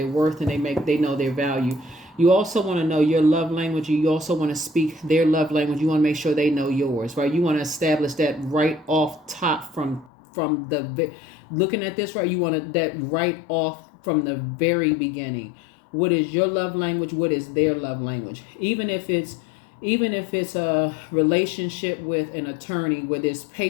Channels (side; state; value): right; drops out; at 10.1 s